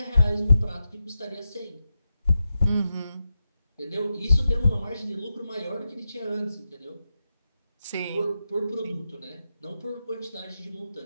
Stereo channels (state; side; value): inverted; both; correlation -0.90